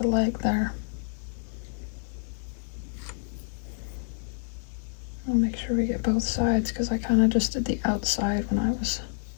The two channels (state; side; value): silent; right; digital silence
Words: leg there. I'll make sure we get both sides because I kind of just did the outside when I was